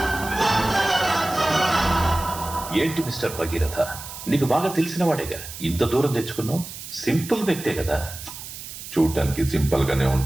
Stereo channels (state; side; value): noise; right; hiss, 12 dB below the sound